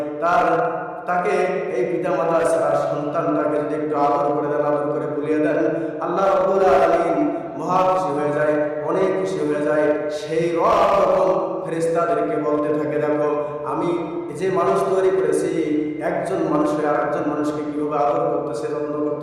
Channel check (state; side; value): identical; both; correlation 1.00